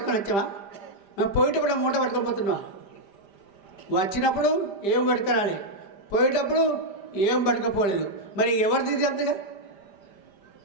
వచ్చామా? మేము పోయేటప్పుడు మూట పట్టుకొని పోతున్నాం. వచ్చినప్పుడు ఏం పట్టుకురాలి, పోయేటప్పుడు ఏం పట్టుకపోలేదు. మరి ఎవరిది అంతగా?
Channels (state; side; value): late; right; 5.0 ms